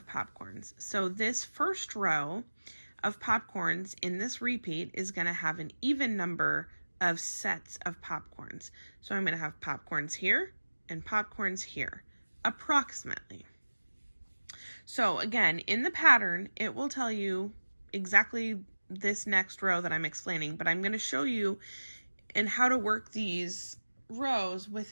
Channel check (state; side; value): inverted; both; correlation -1.00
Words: popcorns. So this first row of popcorns in this repeat is going to have an even number of sets of popcorns. So I'm going to have popcorns here and popcorns here, approximately. So again, in the pattern, it will tell you exactly this next row that I'm explaining, but I'm going to show you and how to work these rows